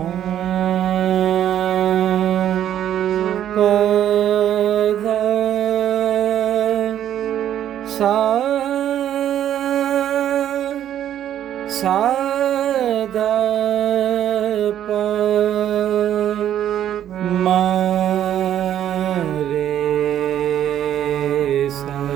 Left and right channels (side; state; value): left; quieter; 10.8 dB